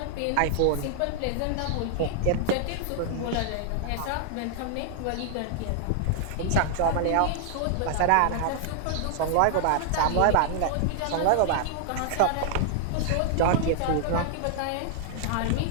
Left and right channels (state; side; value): different; both; correlation 0.00